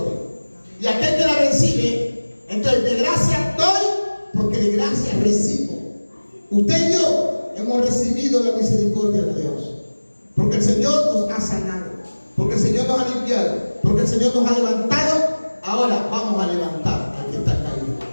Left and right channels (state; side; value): inverted; both; correlation -1.00